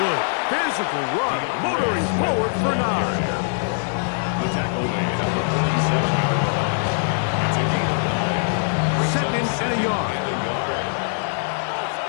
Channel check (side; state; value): right; silent; digital silence